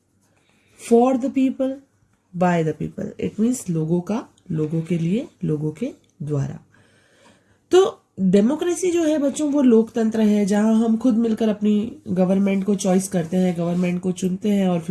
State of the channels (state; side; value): identical; both; correlation 1.00